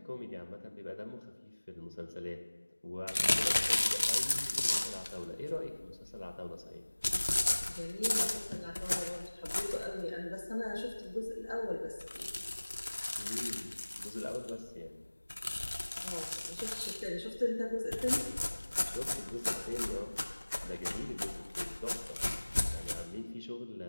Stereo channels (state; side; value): inverted; both; correlation -1.00